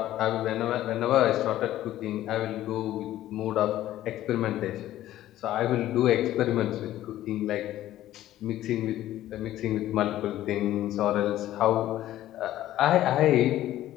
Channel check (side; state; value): right; quieter; 13.7 dB